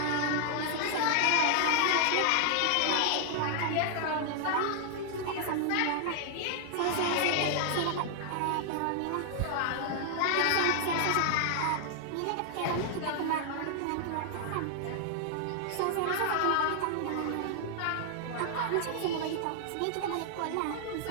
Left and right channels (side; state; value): both; different; correlation 0.00